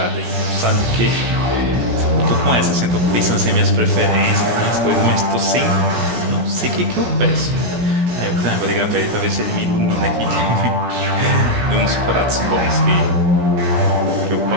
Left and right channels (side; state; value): left; late; 17 ms